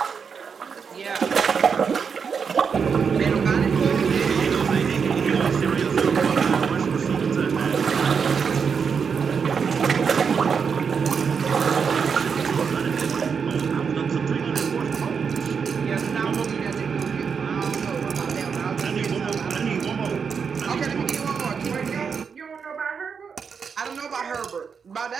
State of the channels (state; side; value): quieter; left; 6.2 dB